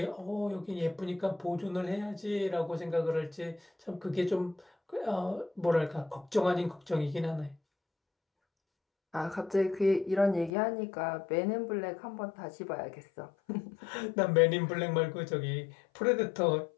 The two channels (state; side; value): drops out; right; at 10.5 s